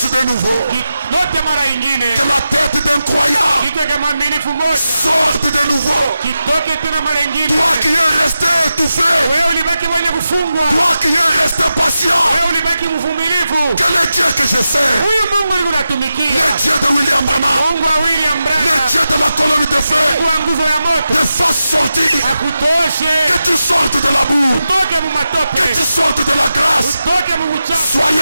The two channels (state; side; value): inverted; both; correlation -0.91